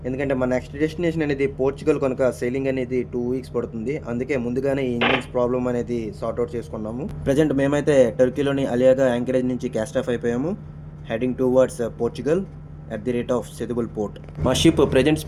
ఎందుకంటే మా నెక్స్ట్ డెస్టినేషన్ అనేది పోర్చుగల్ కనుక సెయిలింగ్ అనేది 2 వీక్స్ పడుతుంది. అందుకే ముందుగానే ఈ ఇంజిన్స్ ప్రాబ్లమ్ అనేది సార్ట్అవుట్ చేసుకున్నాము. ప్రజెంట్ మేమైతే టర్కీలోని అలియాగా యాంకరేజ్ నుంచి క్యాస్ట్ ఆఫ్ అయిపోయాము. Heading towards Portugal at the rate of సెదుబుల్ port. మా షిప్ ప్రజెంట్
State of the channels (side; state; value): both; identical; correlation 1.00